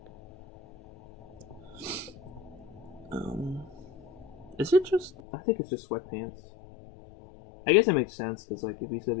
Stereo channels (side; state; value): right; drops out; at 5.1 s